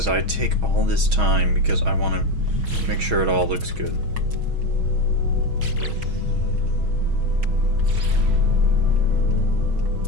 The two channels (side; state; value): left; late; 6.3 ms